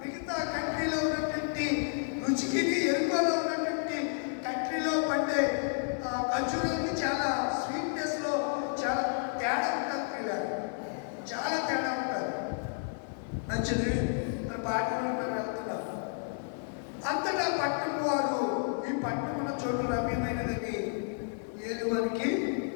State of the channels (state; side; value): silent; right; digital silence